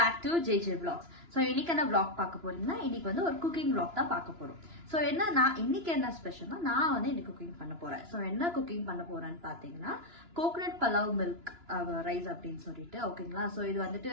to JJ Vlogs. So இன்னைக்கு என்ன vlog பார்க்க போறீங்கன்னா இன்னைக்கு வந்து ஒரு cooking vlog தான் பார்க்க போறோம். So இன்னைக்கு என்ன ஸ்பெஷல்னா நான் வந்து இன்னைக்கு குக்கிங் பண்ண போறேன். So என்ன குக்கிங் பண்ண போறேன்னு பாத்தீங்கன்னா கோகனட் பலாவ் மில்க் ரைஸ் அப்படின்னு சொல்லிட்டு ஓகேங்களா. ஸோ இது வந்துட்டு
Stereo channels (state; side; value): late; left; 2.9 ms